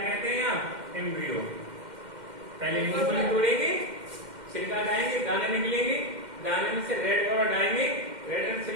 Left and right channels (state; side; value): late; left; 2.1 ms